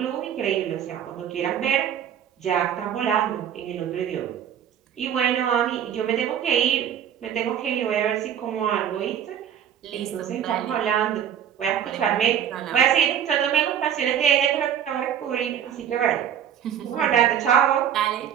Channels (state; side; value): quieter; left; 9.3 dB